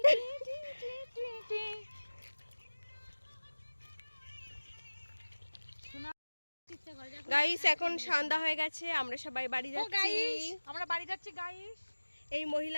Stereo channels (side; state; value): both; inverted; correlation -1.00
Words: গাইস এখন সন্ধ্যা হয়ে গেছে, আমরা সবাই বাড়ি যাচ্ছি। আমরা বাড়ি যাচ্ছি গাইস। এই